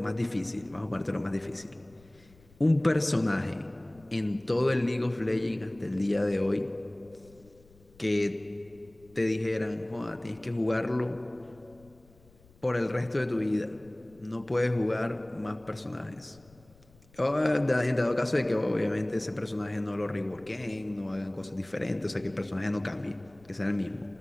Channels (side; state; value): left; noise; rumble, 27 dB below the sound